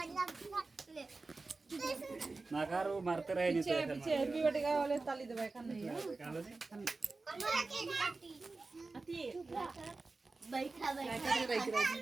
नाकारो मारते रहे नहीं पीछे पीछे हैप्पी बर्थडे का वाले ताली दबाए खान नहीं है बैठा बैठा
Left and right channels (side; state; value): left; quieter; 3.7 dB